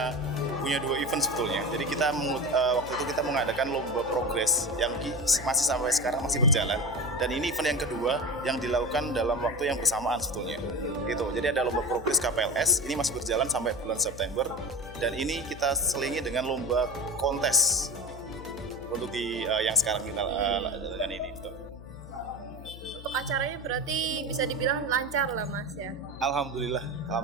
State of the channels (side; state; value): left; noise; hum, 15 dB below the sound